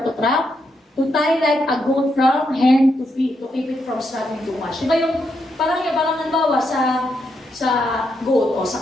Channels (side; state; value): both; normal; correlation 0.81